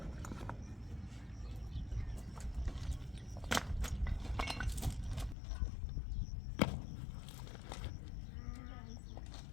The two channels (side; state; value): right; drops out; at 5.4 s